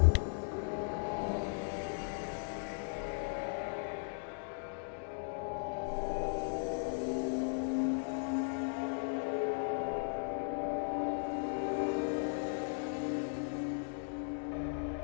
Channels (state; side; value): silent; right; digital silence